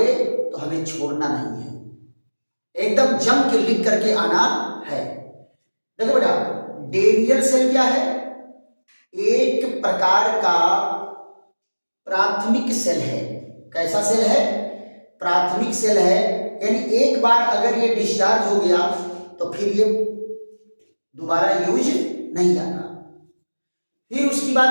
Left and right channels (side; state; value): both; inverted; correlation -1.00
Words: तो हमें छोड़ना नहीं है, एकदम जम के लिख करके आना है। देखो बेटा, डेनियल सेल क्या है? एक प्रकार का प्राथमिक सेल है। कैसा सेल है? प्राथमिक सेल है, यानी एक बार अगर ये डिस्चार्ज हो गया तो फिर ये दोबारा यूज नहीं आता। फिर उसकी